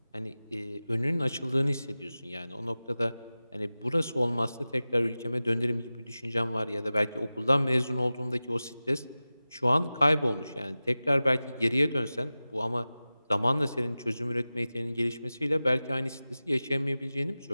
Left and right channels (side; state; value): both; inverted; correlation -0.96